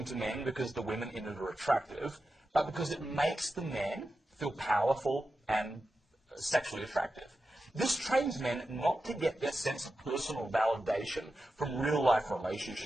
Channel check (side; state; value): both; normal; correlation 0.91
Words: to men because the women in it are attractive, but because it makes the man feel powerful and sexually attractive. This trains men not to get their sense of personal validation from real-life